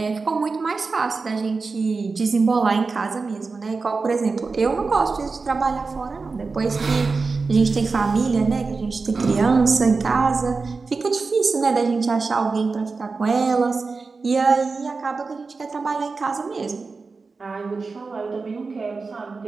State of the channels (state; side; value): quieter; left; 4.3 dB